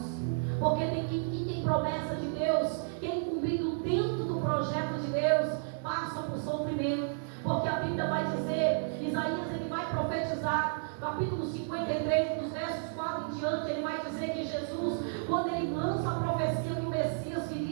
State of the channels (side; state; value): left; silent; digital silence